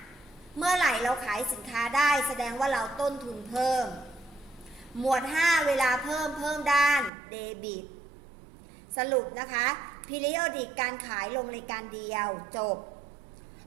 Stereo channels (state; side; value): drops out; left; at 7.1 s